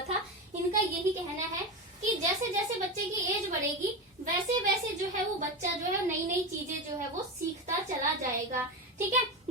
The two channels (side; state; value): both; normal; correlation 0.19